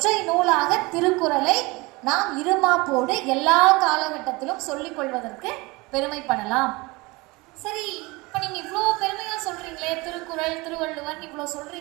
நூலாக திருக்குறளை நாம் இருமாப்போடு எல்லா காலகட்டத்திலும் சொல்லிக் கொள்வதற்கு பெருமைப்படலாம். சரி, இப்ப நீங்க இவ்வளோ பெருமையா சொல்றீங்களே, திருக்குறள், திருவள்ளுவர் இவ்வளோ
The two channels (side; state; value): left; quieter; 24.0 dB